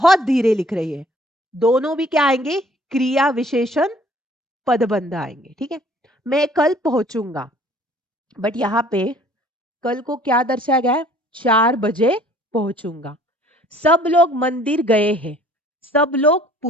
धीरे लिख रही है, दोनों भी क्या आएंगे, क्रिया विशेषण पदबंध आएंगे, ठीक है। मैं कल पहुंचूंगा, बट यहाँ पे कल को क्या दर्शाया गया है, 4 बजे पहुंचूंगा। सब लोग मंदिर गए हैं, सब लोग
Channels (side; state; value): both; normal; correlation 0.55